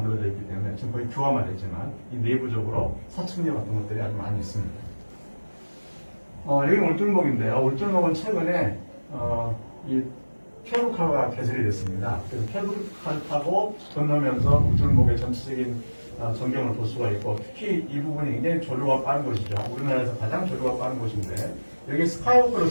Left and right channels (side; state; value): both; inverted; correlation -1.00